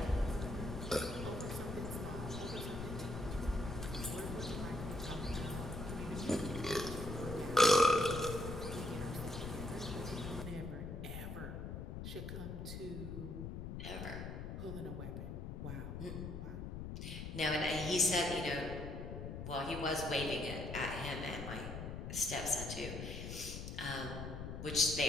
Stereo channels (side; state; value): left; noise; rumble, 6 dB below the sound